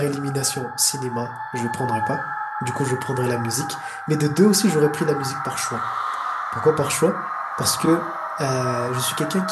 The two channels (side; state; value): both; identical; correlation 1.00